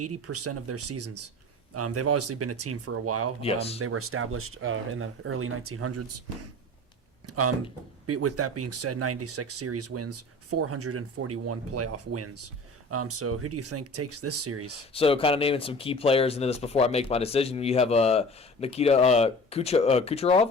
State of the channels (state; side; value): normal; both; correlation 0.40